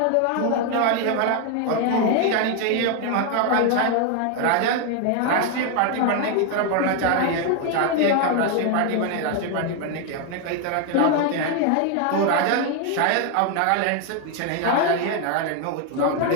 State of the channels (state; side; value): different; both; correlation 0.01